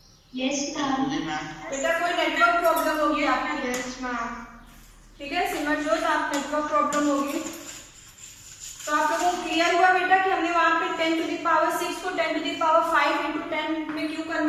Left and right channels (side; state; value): both; identical; correlation 1.00